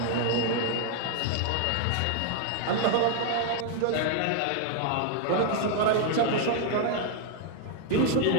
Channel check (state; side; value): different; both; correlation 0.00